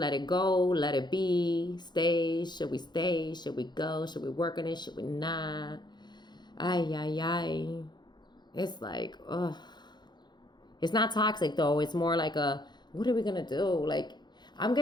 it go, let it be, stay. Should we stay? Should we go? Should we work on it? Should we not? Ay, ay, ay. It's like, ugh. It's not toxic though. It's more like a, what are we gonna do? Like, I'm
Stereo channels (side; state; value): right; late; 0.21 ms